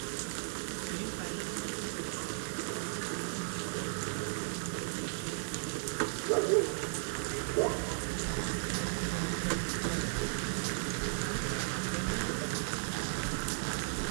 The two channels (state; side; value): silent; left; digital silence